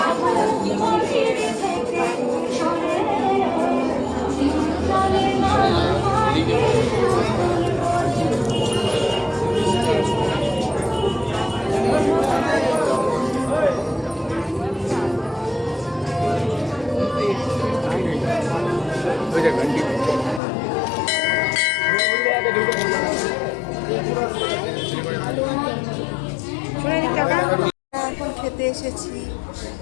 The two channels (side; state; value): right; drops out; at 20.4 s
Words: এখন খেতে এসেছি